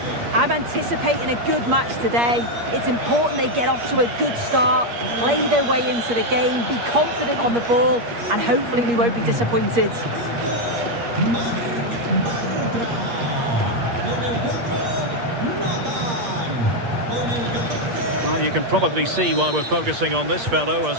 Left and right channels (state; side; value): late; left; 8.5 ms